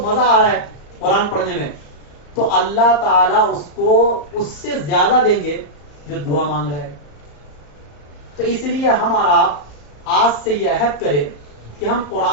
مزہ آ رہا ہے قرآن پڑھنے میں، تو اللہ تعالیٰ اس کو اس سے زیادہ دیں گے جو دعا مانگ رہا ہے. تو اس لیے ہمارا آج سے یہ عہد کرے کہ ہم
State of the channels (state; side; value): late; right; 35 ms